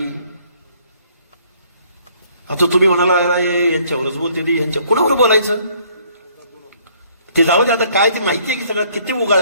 आता तुम्ही म्हणाला यांच्यावरच बोलते ती, यांच्या कुणावर बोलायचं ते जाऊ दे. आता काय ते माहितीये की सगळं किती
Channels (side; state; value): both; inverted; correlation -0.62